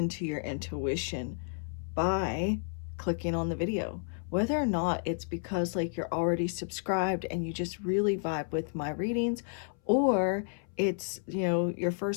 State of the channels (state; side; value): silent; right; 57 dB below the other